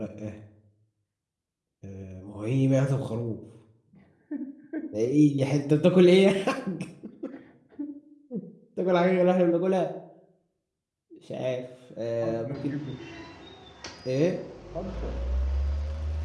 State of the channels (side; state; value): both; identical; correlation 1.00